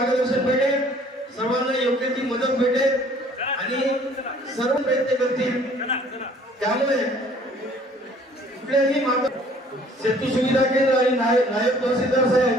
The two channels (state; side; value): normal; both; correlation 0.56